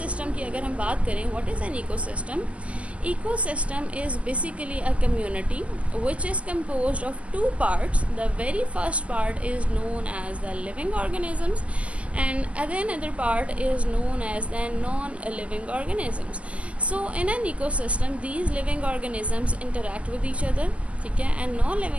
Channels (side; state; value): left; late; 0.062 ms